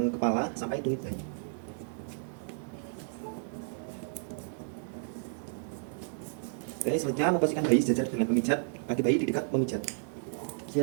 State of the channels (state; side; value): silent; left; digital silence